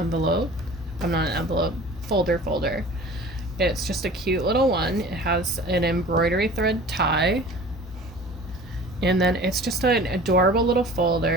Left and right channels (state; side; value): normal; both; correlation 0.43